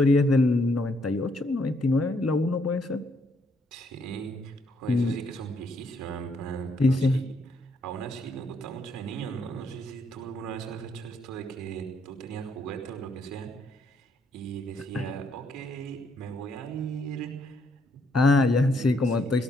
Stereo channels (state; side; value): normal; both; correlation 0.72